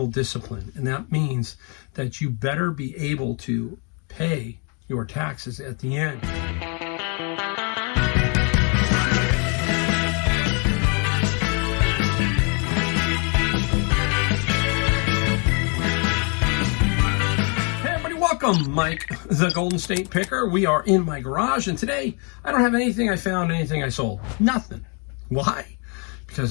discipline. And that means that you better be able to pay your taxes at the end. Welcome, Mike, the Golden State Picker. We are in my garage, and today I don't have anything I found, anything I sold. Nothing. Why?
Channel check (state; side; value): quieter; right; 36.3 dB